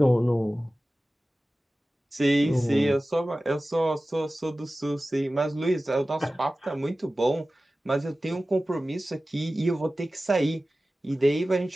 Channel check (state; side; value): normal; both; correlation 0.96